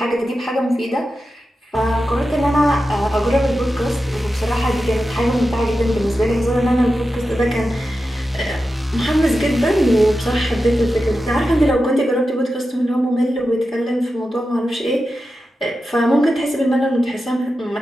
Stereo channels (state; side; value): normal; both; correlation 0.91